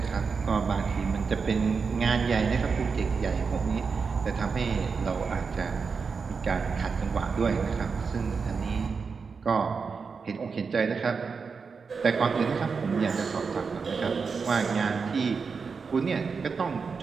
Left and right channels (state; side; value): quieter; left; 5.2 dB